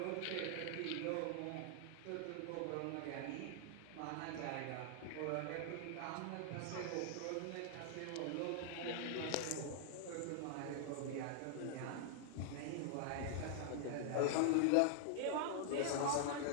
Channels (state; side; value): different; both; correlation -0.01